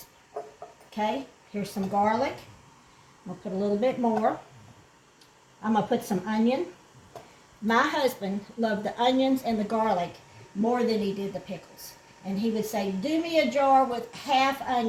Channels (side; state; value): both; identical; correlation 1.00